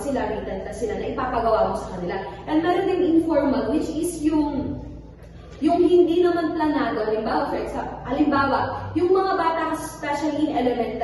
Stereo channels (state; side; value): identical; both; correlation 1.00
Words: sila, written test sila na ipapagawa mo sa kanila. And meron din informal, which is yung hindi naman planado. Halimbawa, yung mga bata, especially in